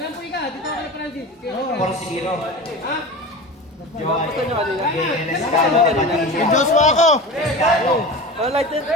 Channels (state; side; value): normal; both; correlation 0.31